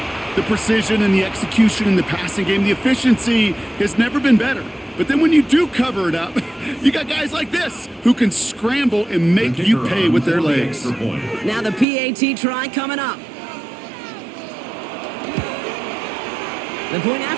The precision and the execution in the passing game, the efficiency has never been better. But then when you do cover it up, you got guys like this who can scramble and make you pay with their legs. Now the PAT try coming up. The point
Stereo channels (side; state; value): left; drops out; at 11.9 s